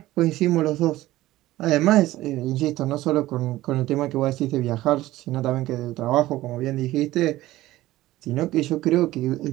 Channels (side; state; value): left; quieter; 16.3 dB